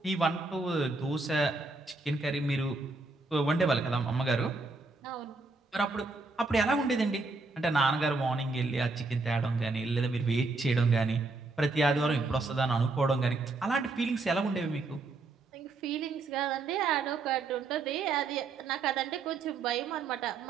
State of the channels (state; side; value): quieter; left; 3.5 dB